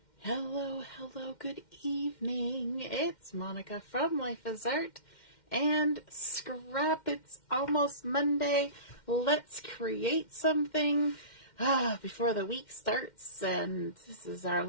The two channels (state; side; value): late; right; 2.1 ms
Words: Hello, hello, good evening. It's Monica from Life is Art and Scrap. It's almost Monday. Let's create something before the week starts. And this is our